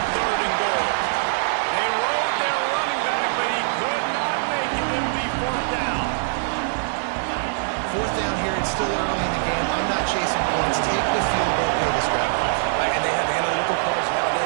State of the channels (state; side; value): silent; left; digital silence